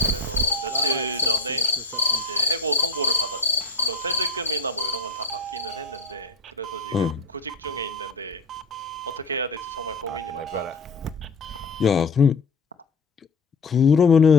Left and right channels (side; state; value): right; quieter; 3.5 dB